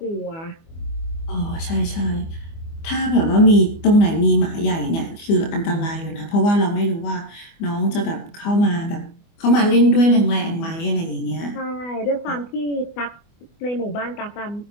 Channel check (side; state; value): right; late; 24 ms